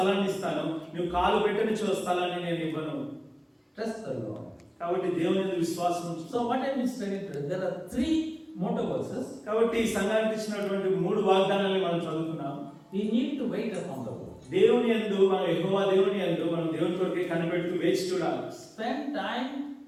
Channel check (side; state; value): both; identical; correlation 1.00